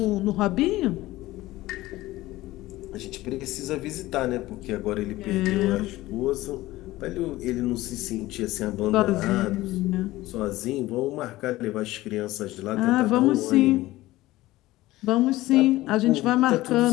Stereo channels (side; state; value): right; quieter; 17.5 dB